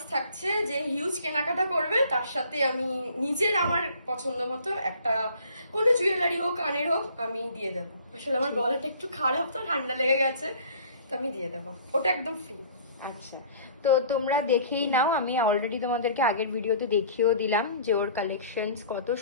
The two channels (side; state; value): both; inverted; correlation -0.51